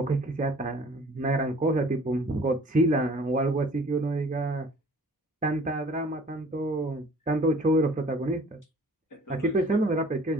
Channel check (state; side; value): normal; both; correlation 0.50